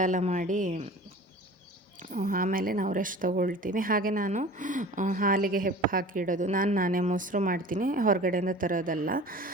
ಎಲ್ಲ ಮಾಡಿ ಆಮೇಲೆ ನಾವು ರೆಸ್ಟ್ ತೊಗೊಳ್ತೀವಿ. ಹಾಗೆ ನಾನು ಹಾಲಿಗೆ ಹೆಪ್ಪು ಹಾಕಿ ಇಡೋದು, ನಾನೇ ಮೊಸರು ಮಾಡ್ತೀನಿ, ಹೊರಗಡೆಯಿಂದ ತರೋದಲ್ಲ.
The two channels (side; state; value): both; normal; correlation 0.41